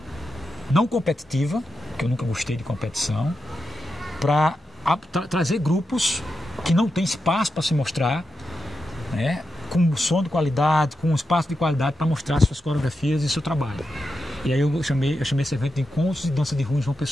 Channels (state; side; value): normal; both; correlation 0.88